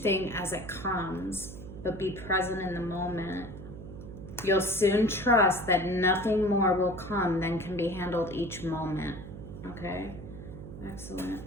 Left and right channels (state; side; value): noise; right; hum, 12 dB below the sound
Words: as it comes, but be present in the moment. You'll soon trust that nothing more will come than can be handled each moment. Okay? Excellent.